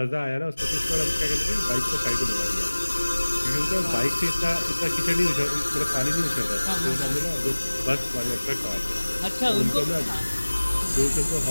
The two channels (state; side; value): inverted; both; correlation -1.00